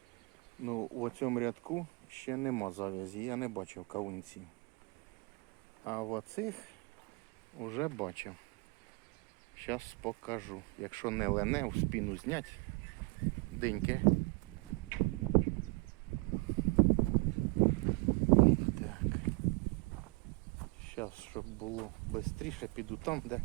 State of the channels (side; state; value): left; quieter; 28.9 dB